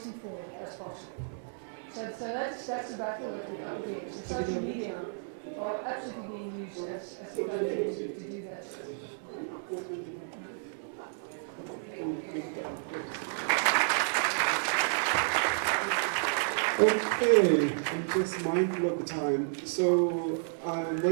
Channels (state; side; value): silent; left; digital silence